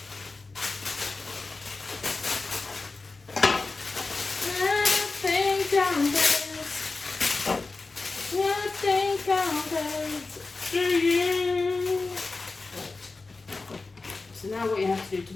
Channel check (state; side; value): quieter; right; 3.7 dB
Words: So now what you have to do to